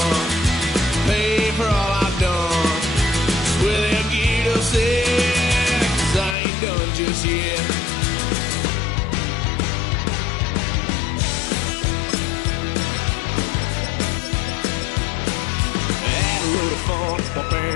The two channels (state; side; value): drops out; right; at 6.4 s